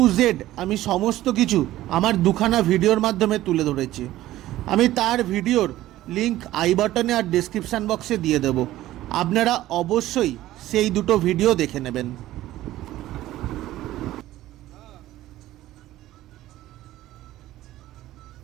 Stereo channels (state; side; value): quieter; left; 15.0 dB